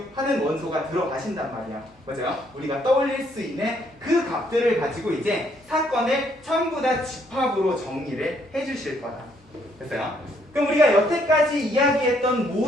하는 원소가 들어가신단 말이야. 맞아요? 우리가 떠올릴 수 있는 그 값들을 가지고 이제 사건을 전부 다 집합으로 정리를 해주실 거다. 됐어요? 그럼 우리가 여태까지 이야기했던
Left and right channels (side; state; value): both; normal; correlation 0.69